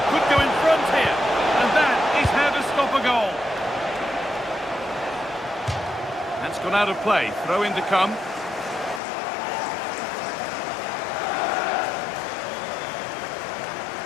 Could go in front here. And that is how to stop a goal. That's gone out of play. Throw in to come.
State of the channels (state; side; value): drops out; right; at 9.0 s